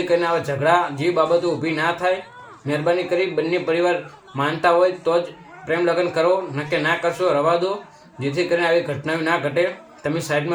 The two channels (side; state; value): both; identical; correlation 1.00